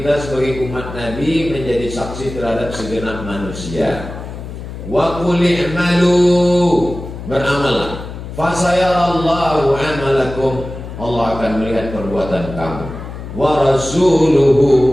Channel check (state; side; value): noise; left; hum, 10 dB below the sound